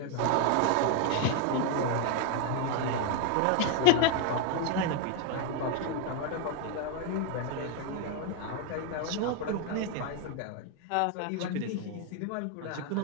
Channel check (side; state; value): both; different; correlation 0.01